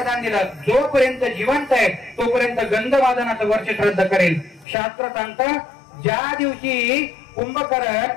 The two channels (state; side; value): drops out; right; at 4.7 s